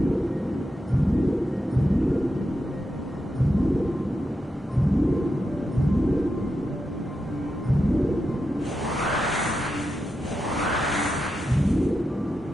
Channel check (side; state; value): both; normal; correlation 0.87